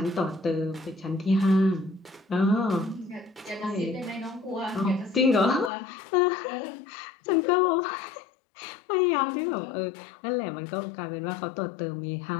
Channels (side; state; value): right; drops out; at 5.7 s